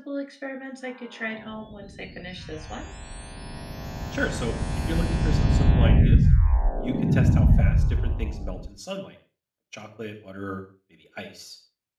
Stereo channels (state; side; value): identical; both; correlation 1.00